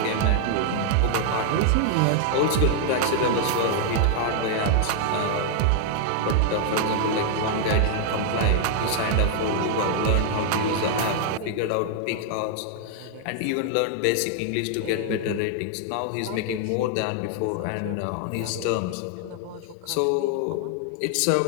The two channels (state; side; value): different; both; correlation 0.00